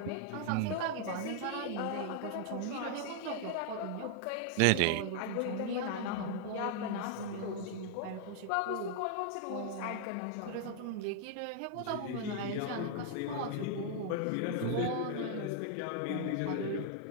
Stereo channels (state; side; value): different; both; correlation -0.01